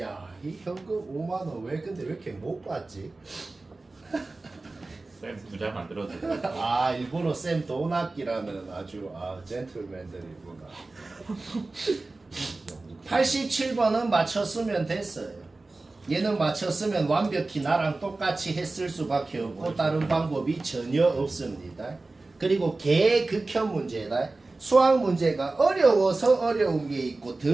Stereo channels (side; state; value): left; quieter; 3.3 dB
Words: 이 현금 5만원 왜 근데 왜 이렇게 못 받지? 쌤 부자 만들어도 아, 일본어 쌤 돈 아끼라는 아주 젠틀맨들이구나. 87번은 맞췄으면 됐어요. 얘는 맞췄으면 완벽히 나랑 똑같이 했을 수밖에 없고 다른 방법이 전혀 없습니다. 그리고 개극혐 문제다. 수학 문제가 어려워서 어려운 게 있고